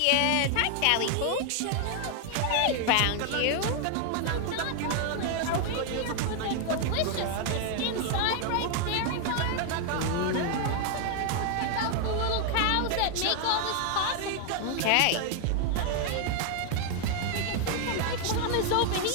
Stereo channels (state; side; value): different; both; correlation 0.00